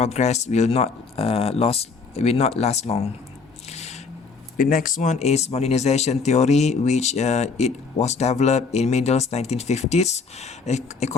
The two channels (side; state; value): right; quieter; 4.8 dB